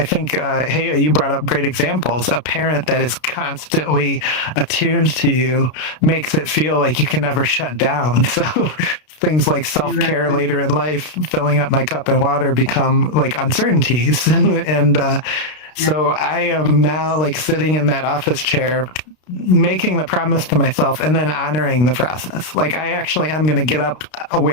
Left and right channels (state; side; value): late; right; 32 ms